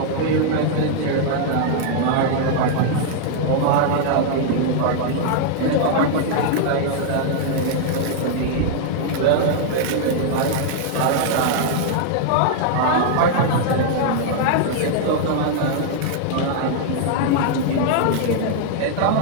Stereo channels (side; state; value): both; different; correlation -0.01